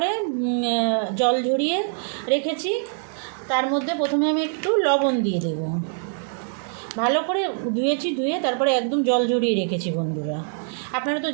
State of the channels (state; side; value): silent; left; 61 dB below the other